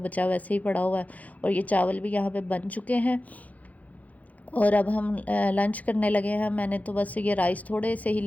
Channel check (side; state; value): right; late; 0.074 ms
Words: वैसे ही पड़ा हुआ है, और ये चावल भी यहाँ पे बन चुके हैं। और अब हम लंच करने लगे हैं। मैंने तो बस ये राइस थोड़े से ही